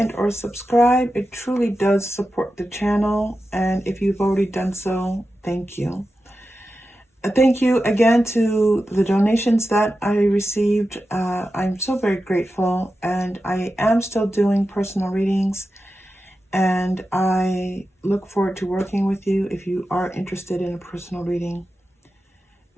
or subscribe. It truly does support the channel. And if you've already done so, thank you. Thank you again to the donations that I received. I'm so very grateful. And I am still doing personal readings. And I look forward to working with you if you are interested in a personal reading.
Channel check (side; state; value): both; normal; correlation 0.92